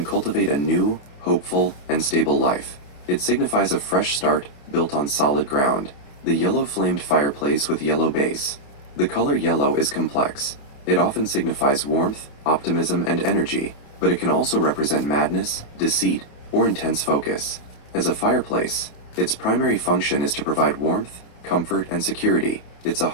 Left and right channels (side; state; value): right; late; 28 ms